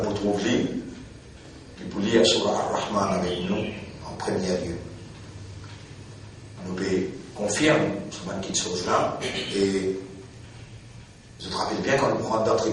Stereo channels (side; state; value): both; identical; correlation 1.00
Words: pour trouver, et pour lire sur Ar-Rahman avec nous en premier lieu. Nous devons confirmer cette chose-là et je te rappelle bien quand nous prenons dans le